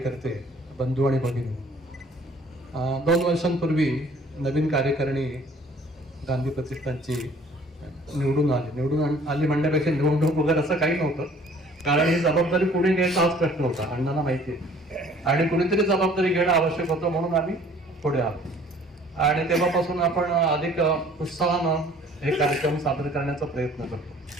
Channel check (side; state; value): both; normal; correlation 0.54